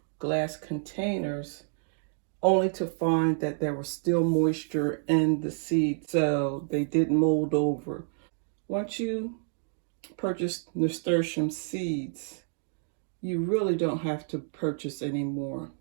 glass containers, only to find that there was still moisture in the seed, so they didn't mold over. Once you purchase nasturtium seeds, you really don't have to purchase anymore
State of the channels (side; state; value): left; silent; digital silence